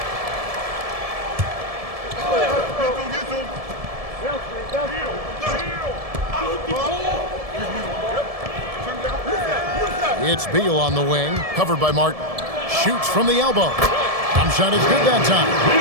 It's Beal on the wing, covered by Martin. Shoots from the elbow. Jump shot is good that time.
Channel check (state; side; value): late; left; 1.7 ms